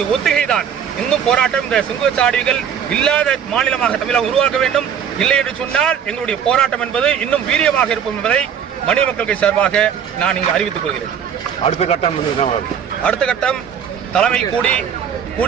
ஒத்திகைதான். இன்னும் போராட்டம் இந்த சுங்கச்சாவடிகள் இல்லாத மாநிலமாக தமிழகம் உருவாக்க வேண்டும். இல்லை என்று சொன்னால் எங்களுடைய போராட்டம் என்பது இன்னும் வீரியமாக இருக்கும் என்பதை மனித மக்கள் கட்சி சார்பாக நான் இங்கு அறிவித்துக் கொள்கிறேன். அடுத்த கட்டம் தலைமை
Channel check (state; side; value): quieter; left; 8.0 dB